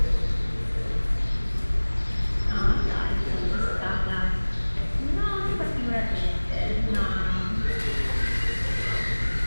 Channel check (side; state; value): both; inverted; correlation -1.00